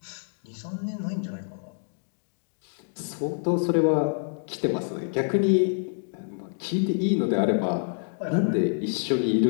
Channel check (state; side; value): silent; right; digital silence